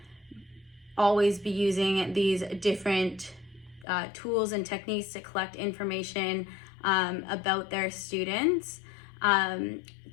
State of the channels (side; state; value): right; drops out; at 3.9 s